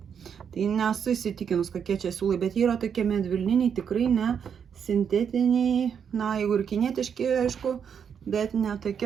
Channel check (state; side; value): quieter; left; 7.5 dB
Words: Tai nesu įsitikinus, kokie čia siūlai, bet jie yra tokie medvilniniai, tikrai ne sintetiniai, jeigu ir kinietiški, aišku, bet ne